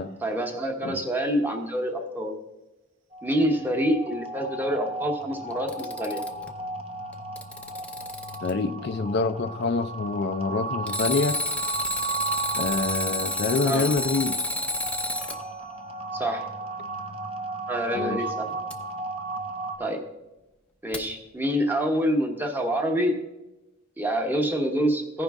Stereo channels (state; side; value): normal; both; correlation 0.38